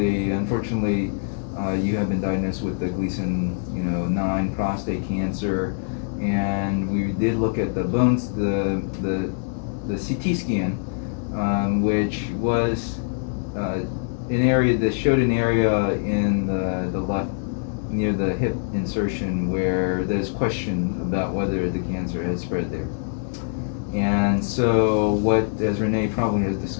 unfortunately, you have been diagnosed with the Gleason 9 prostate cancer, and we did look at the bones, the CT scan, which was an area that showed an area in the left near the hip insertion where there's question about whether the cancer has spread there. And so what, as Renee probably has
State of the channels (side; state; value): right; silent; 63 dB below the other